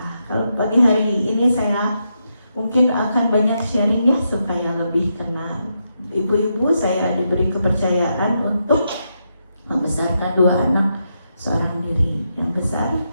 Kalau pagi hari ini saya mungkin akan banyak sharing ya supaya lebih kenal. Ibu-ibu, saya diberi kepercayaan untuk membesarkan 2 anak seorang diri. Yang besar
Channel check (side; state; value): both; inverted; correlation -0.83